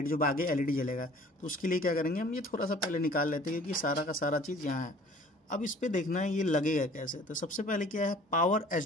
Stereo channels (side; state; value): both; normal; correlation 0.50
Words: जो आगे LED जलेगा। तो उसके लिए क्या करेंगे, हम ये थोड़ा सा पहले निकाल लेते हैं, क्योंकि सारा का सारा चीज़ यहाँ है। अब इस पर देखना है ये लगेगा कैसे। तो सबसे पहले क्या है, पावर